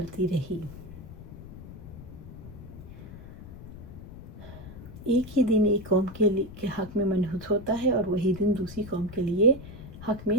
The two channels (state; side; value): noise; left; rumble, 14 dB below the sound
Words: رہی۔ ایک ہی دن ایک قوم کے حق میں منحوس ہوتا ہے اور وہی دن دوسری قوم کے لیے حق میں